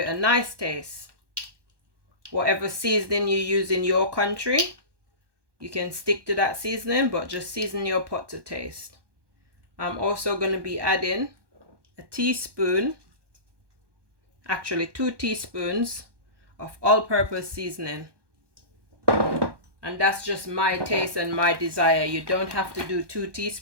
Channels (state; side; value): late; left; 1.2 ms